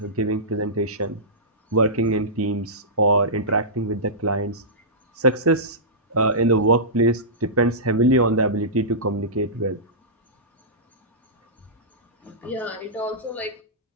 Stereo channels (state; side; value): normal; both; correlation -0.18